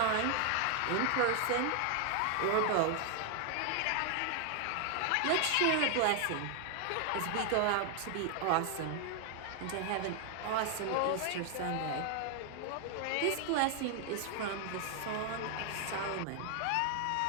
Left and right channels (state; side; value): different; both; correlation 0.00